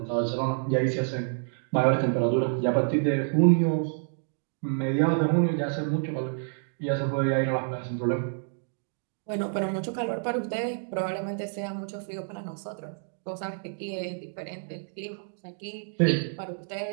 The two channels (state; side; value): silent; left; digital silence